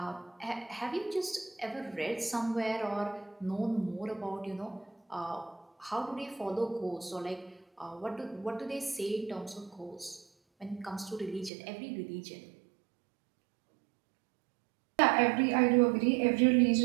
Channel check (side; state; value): left; drops out; at 11.5 s